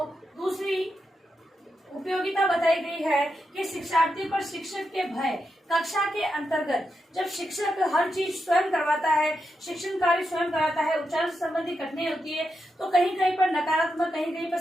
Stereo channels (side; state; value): both; normal; correlation 0.86